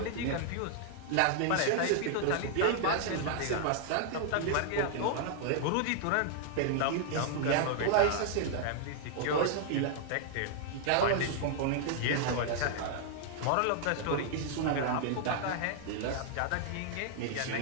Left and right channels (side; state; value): both; different; correlation -0.01